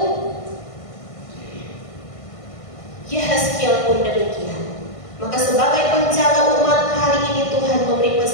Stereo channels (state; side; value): late; right; 1.5 ms